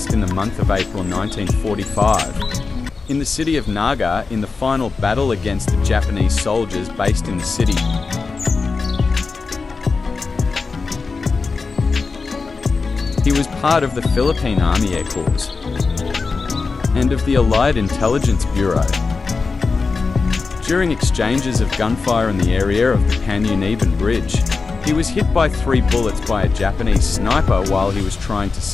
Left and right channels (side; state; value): right; quieter; 4.4 dB